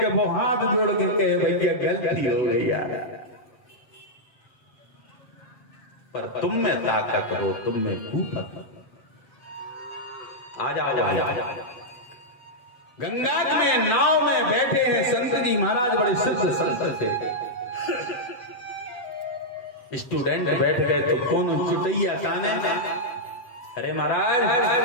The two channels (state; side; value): late; right; 8.3 ms